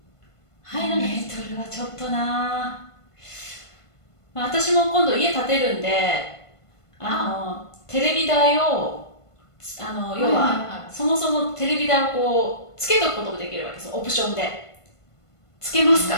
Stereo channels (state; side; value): late; right; 1.5 ms